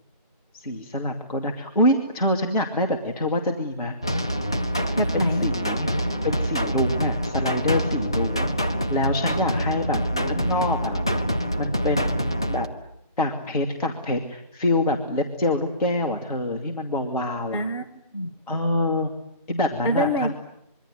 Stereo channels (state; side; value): inverted; both; correlation -0.48